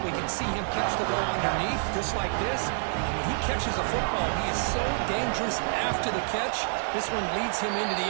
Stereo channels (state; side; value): silent; left; 59 dB below the other